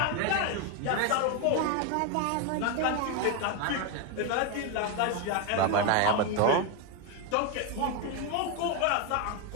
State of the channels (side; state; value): both; different; correlation 0.01